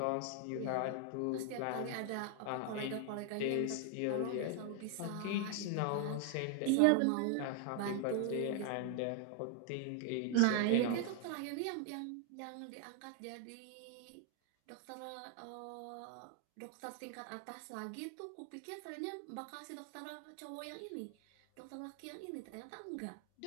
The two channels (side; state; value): both; different; correlation 0.00